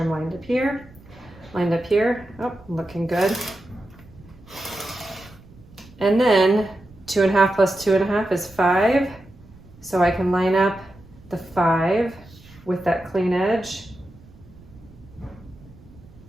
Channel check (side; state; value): right; noise; rumble, 23 dB below the sound